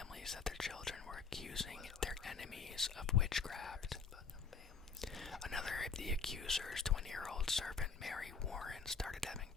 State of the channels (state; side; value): quieter; right; 5.4 dB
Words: that their children were accusing their enemies of witchcraft. Another of the accusers, 20-year-old servant Mary Warren, started having